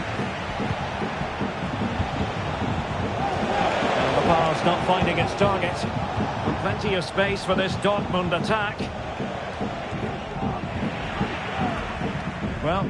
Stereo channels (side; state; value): both; identical; correlation 1.00